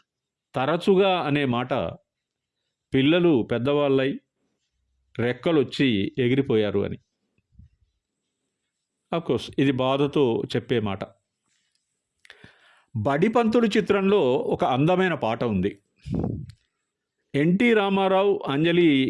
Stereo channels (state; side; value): identical; both; correlation 1.00